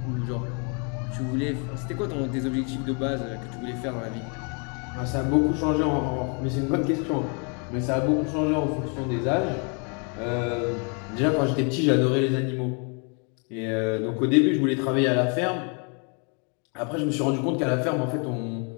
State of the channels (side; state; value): right; quieter; 37.3 dB